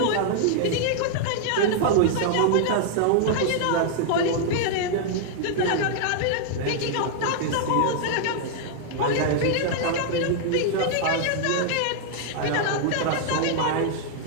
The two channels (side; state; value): both; different; correlation 0.00